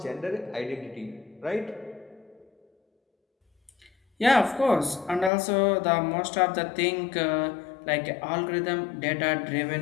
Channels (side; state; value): right; drops out; at 5.3 s